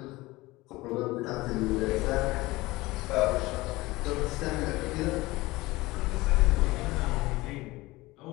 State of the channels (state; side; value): quieter; right; 20.4 dB